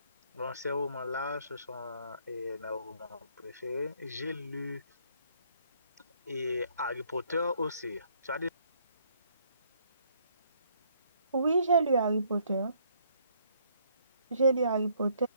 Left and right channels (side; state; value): both; inverted; correlation -0.67